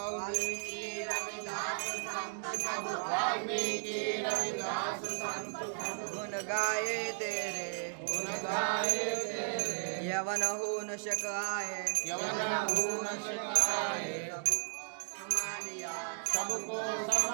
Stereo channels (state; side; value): silent; left; digital silence